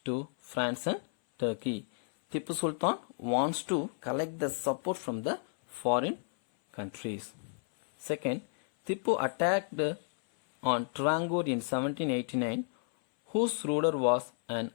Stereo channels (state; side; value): silent; right; 57 dB below the other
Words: to France and Turkey. Tipu Sultan wants to collect the support from the foreign countries. Second, Tipu attacked on Trarangore in 1789, whose ruler was an